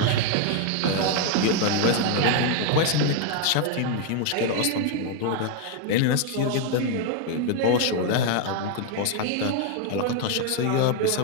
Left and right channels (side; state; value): both; different; correlation 0.01